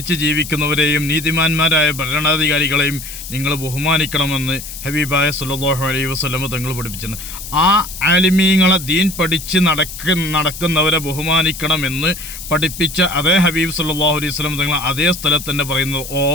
ജീവിക്കുന്നവരെയും നീതിമാന്മാരായ ഭരണാധികാരികളെയും നിങ്ങൾ ബഹുമാനിക്കണമെന്ന് ഹബീബായ സല്ലല്ലാഹു അലൈഹി വസല്ലം തങ്ങൾ പഠിപ്പിച്ചിട്ടുണ്ട്. ആ ആലിമീങ്ങളെ, ദീൻ പഠിച്ച് നടക്കുന്നവരെ ബഹുമാനിക്കണമെന്ന് പഠിപ്പിച്ച അതേ ഹബീബ് സല്ലല്ലാഹു അലൈഹി വസല്ലം തങ്ങൾ അതേ സ്ഥലത്ത് തന്നെ പറയുന്നത്,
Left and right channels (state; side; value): noise; left; hiss, 11 dB below the sound